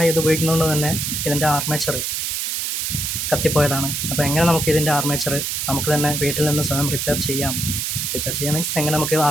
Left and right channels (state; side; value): noise; right; hiss, 1 dB below the sound